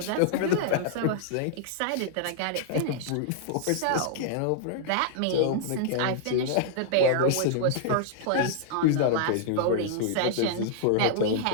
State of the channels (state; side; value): different; both; correlation -0.01